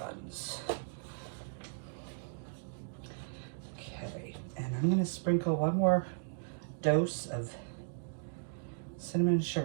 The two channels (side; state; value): left; silent; digital silence